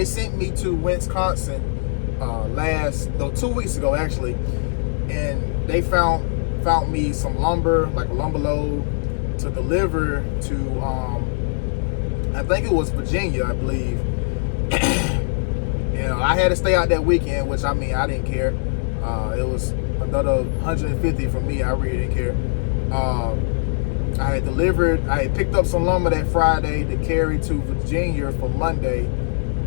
me to Wisconsin 2 weeks ago actually, and they found me some lumber, like a lumber load, to deliver to I think it was Virginia, I believe. You know, I had to stay out that weekend, which I mean, I didn't care. It was another 150 for me. I really didn't care. I had picked up some lumber that Friday to carry to Virginia for Monday,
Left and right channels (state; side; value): silent; right; digital silence